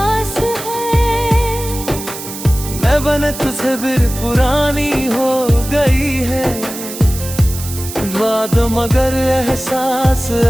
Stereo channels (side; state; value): right; noise; hiss, 10 dB below the sound